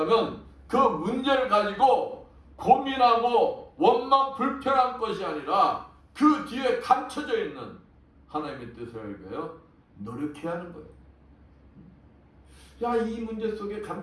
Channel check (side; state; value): both; identical; correlation 1.00